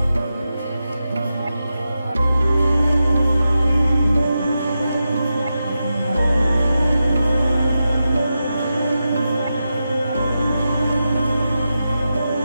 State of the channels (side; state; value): both; inverted; correlation -0.90